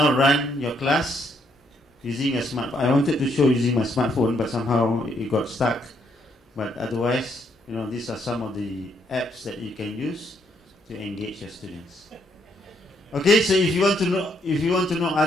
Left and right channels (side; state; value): both; normal; correlation 0.72